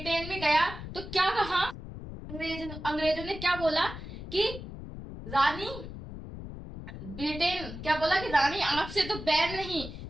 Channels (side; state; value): left; noise; rumble, 10 dB below the sound